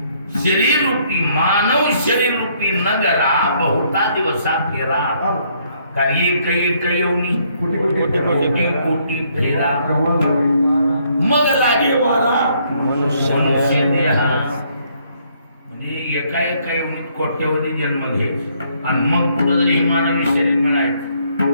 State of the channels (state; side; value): inverted; both; correlation -0.68